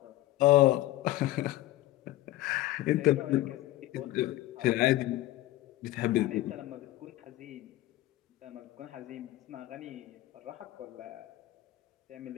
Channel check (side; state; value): right; quieter; 16.1 dB